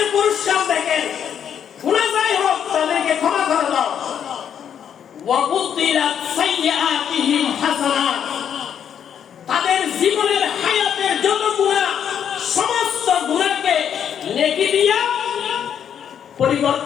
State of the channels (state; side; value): quieter; right; 8.6 dB